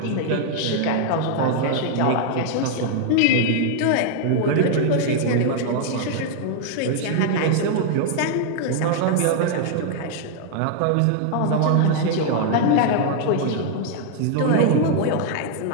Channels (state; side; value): different; both; correlation 0.00